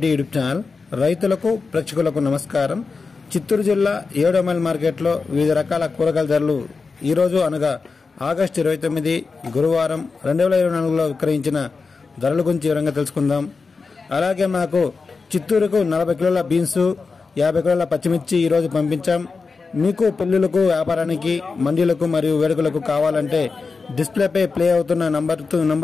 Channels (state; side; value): quieter; right; 4.5 dB